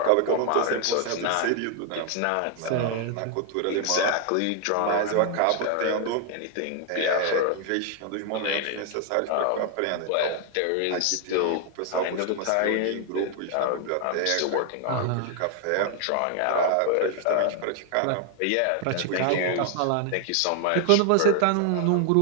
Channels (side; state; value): both; different; correlation 0.00